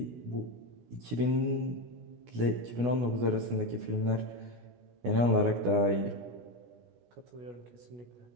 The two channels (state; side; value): late; left; 16 ms